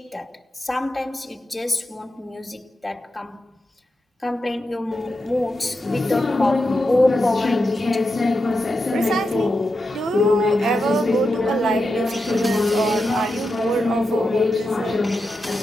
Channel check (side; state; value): both; normal; correlation 0.88